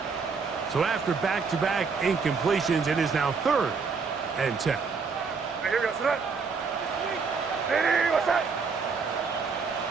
So after back-to-back incompletions, it is now 3rd and 10.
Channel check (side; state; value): left; quieter; 5.1 dB